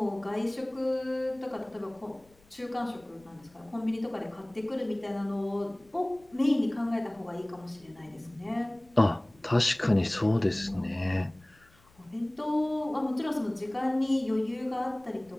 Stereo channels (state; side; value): noise; left; rumble, 30 dB below the sound